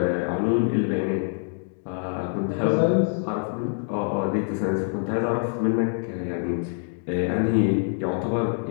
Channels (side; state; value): right; silent; digital silence